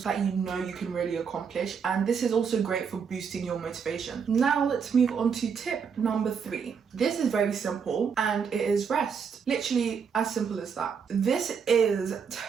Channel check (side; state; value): left; quieter; 6.5 dB